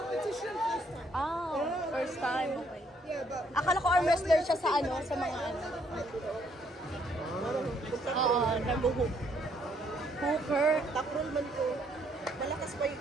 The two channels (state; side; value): normal; both; correlation 0.69